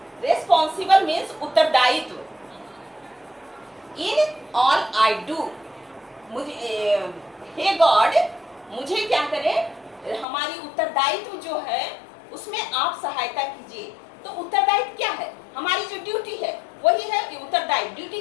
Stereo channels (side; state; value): right; drops out; at 10.2 s